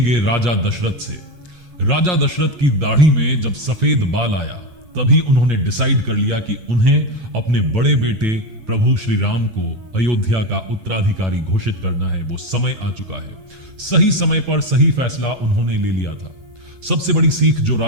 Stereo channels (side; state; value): left; late; 8.5 ms